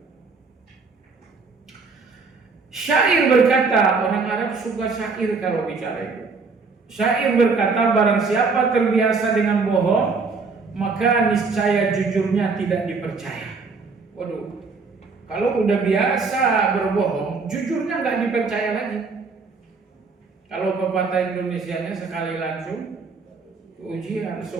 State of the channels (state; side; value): quieter; left; 4.5 dB